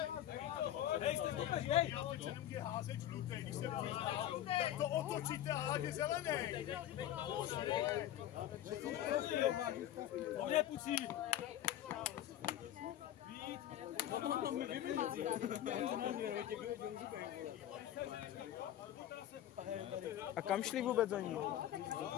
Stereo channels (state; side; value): quieter; right; 12.1 dB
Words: Nemůže házet žlutej, když se tak to otočíte a hádě zelený. On je pucí. A kam šli vůbec oni?